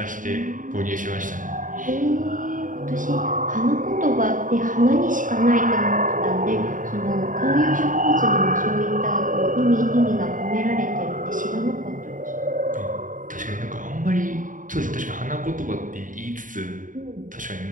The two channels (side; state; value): left; late; 0.38 ms